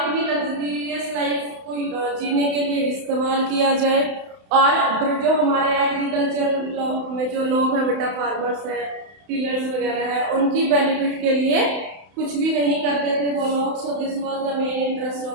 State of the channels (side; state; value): left; late; 31 ms